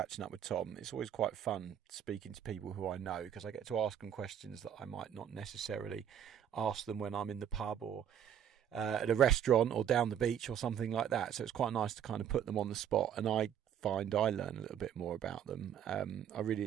up with Tom. It's always quite fun speaking to people who I know, because I get to ask them questions that I might not necessarily ask them when I'm in the pub or at a restaurant or down the beach or something like that. So it's quite nice to kind of put them on the spot, and I find I learn a little bit more about them. I really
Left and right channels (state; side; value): quieter; left; 9.3 dB